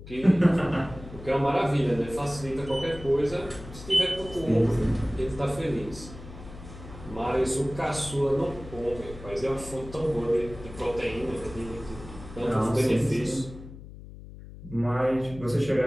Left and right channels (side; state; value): left; noise; hum, 15 dB below the sound